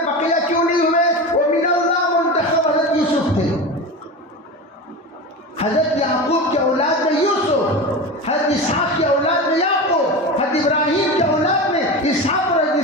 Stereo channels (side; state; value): both; normal; correlation 0.26